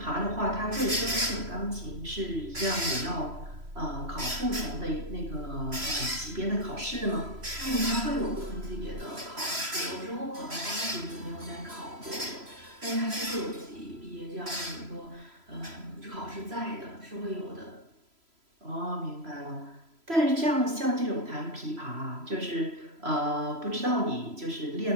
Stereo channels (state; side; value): late; left; 3.0 ms